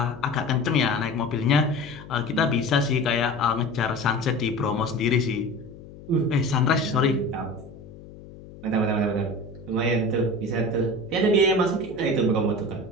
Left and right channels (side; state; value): left; noise; hum, 17 dB below the sound